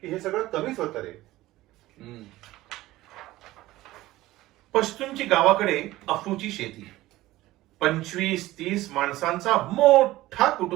की हे सगळं कमीच होतं रे. पश्तूंची गावाकडे अफूची शेती, 25-30 माणसांचा मोठा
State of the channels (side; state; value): left; quieter; 17.0 dB